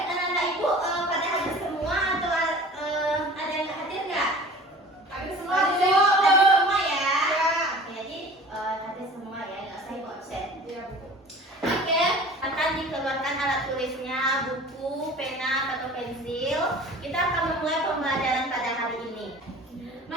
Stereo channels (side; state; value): both; normal; correlation 0.43